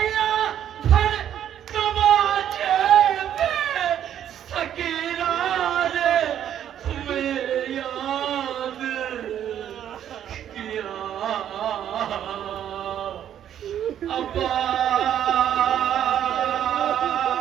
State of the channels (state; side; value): quieter; left; 10.2 dB